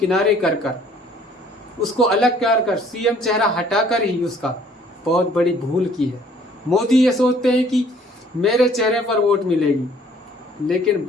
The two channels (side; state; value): both; normal; correlation 0.58